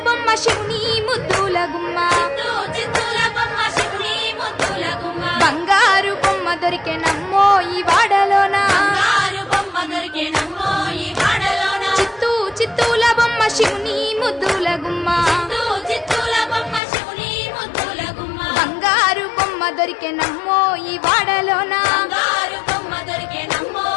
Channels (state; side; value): drops out; right; at 16.8 s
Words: బొమ్మ శివుని ముద్దుల గుమ్మ చిత్తూల బొమ్మ శివుని ముద్దుల గుమ్మ బంగారు బొమ్మ దొరికెనమ్మో ఈ వాడలోన బంగారు బొమ్మ దొరికెనమ్మో ఈ వాడలోన చిత్తూల బొమ్మ శివుని ముద్దుల గుమ్మ చిత్తూల బొమ్మ శివుని ముద్దుల గుమ్మ బంగారు బొమ్మ దొరికెనమ్మో ఈ వాడలోన బంగారు బొమ్మ దొరికెనమ్మో